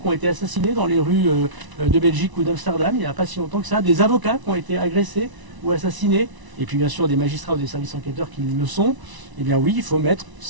ont été assassinés dans les rues de Belgique ou d'Amsterdam, il n'y a pas si longtemps que ça, des avocats qui ont été agressés ou assassinés, et puis bien sûr des magistrats ou des services enquêteurs qui le sont. Eh bien oui, il faut mettre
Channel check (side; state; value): left; late; 1.0 ms